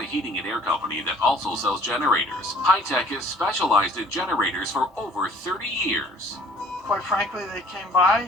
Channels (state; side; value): normal; both; correlation 0.53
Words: heating and air company that also sells generators. High Tech is specialized in generators for over 30 years. Quite frankly, they came